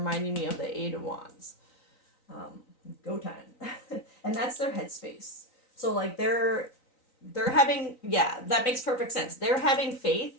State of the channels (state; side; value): late; right; 3.9 ms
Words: me of the Eight of Wands. Go time. And that's their headspace. So like they're having, yeah, that makes perfect sense. They're having